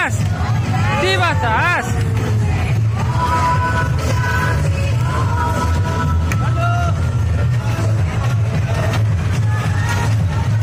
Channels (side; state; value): both; identical; correlation 1.00